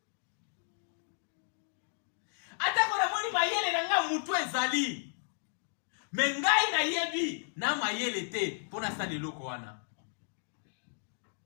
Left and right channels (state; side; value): silent; right; digital silence